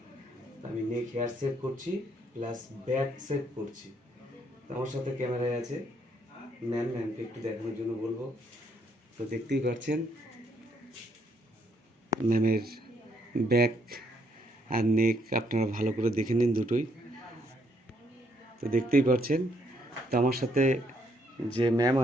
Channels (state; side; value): normal; both; correlation 0.71